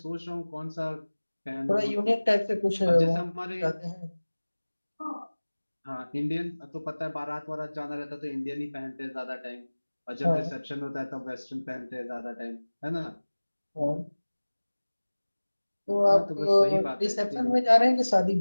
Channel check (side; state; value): both; inverted; correlation -1.00